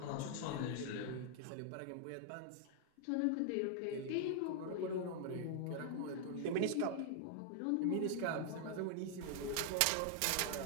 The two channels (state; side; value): different; both; correlation 0.00